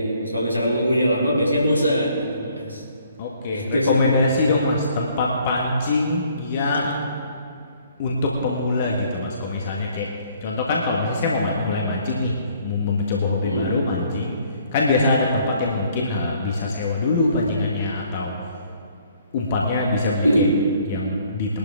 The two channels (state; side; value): inverted; both; correlation -0.63